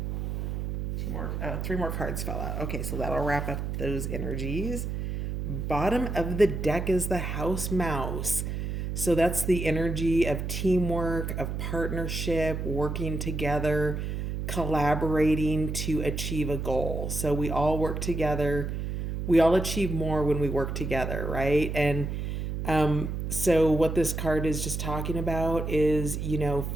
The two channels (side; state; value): right; noise; hum, 3 dB below the sound